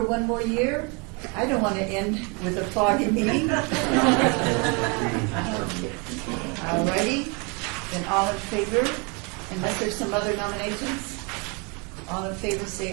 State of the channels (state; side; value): quieter; left; 31.7 dB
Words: one more year. I don't want to end with a foggy meeting. Alrighty, then all in favor, unless there's some other nominations? All in favor